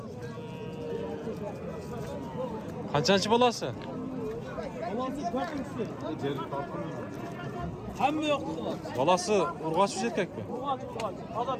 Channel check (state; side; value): identical; both; correlation 1.00